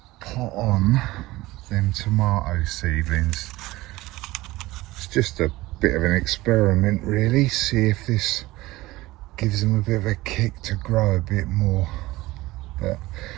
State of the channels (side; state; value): left; quieter; 18.9 dB